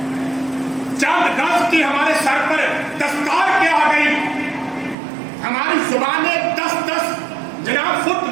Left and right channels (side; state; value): left; drops out; at 5.0 s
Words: چند گز کی ہمارے سر پر دستار کیا آ گئی, ہماری زبانیں 10 جناب فٹ